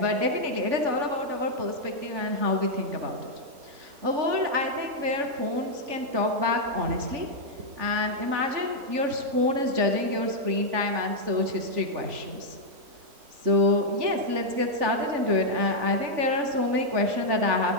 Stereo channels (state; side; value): late; left; 3.4 ms